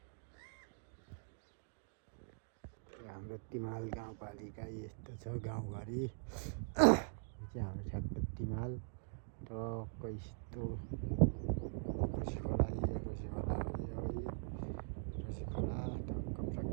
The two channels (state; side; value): silent; left; digital silence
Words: हाम्रो तिमाल गाउँपालिका यस्तो छ गाउँघरि चाहिँ हाम्रो ठ्याक्क तिमाल टक्क यस्तो रसी खोला टक्क